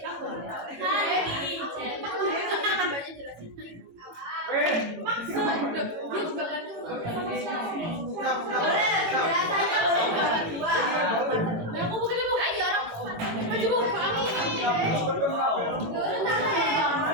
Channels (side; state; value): left; late; 18 ms